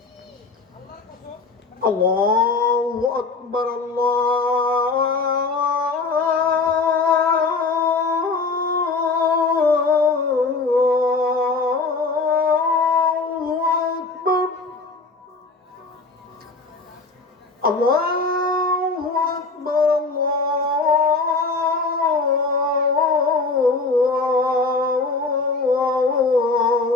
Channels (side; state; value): right; quieter; 4.0 dB